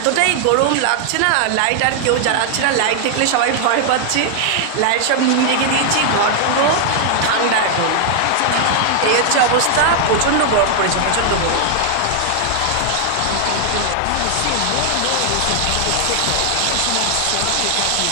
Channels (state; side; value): different; both; correlation 0.00